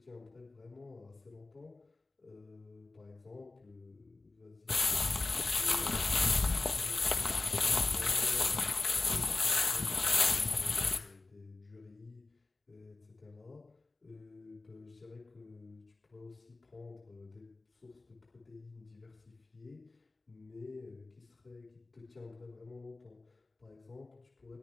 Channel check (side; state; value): right; quieter; 3.4 dB